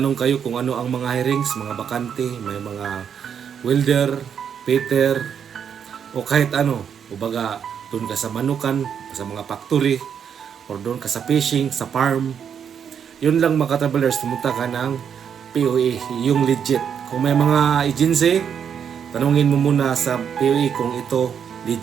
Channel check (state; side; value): quieter; left; 7.8 dB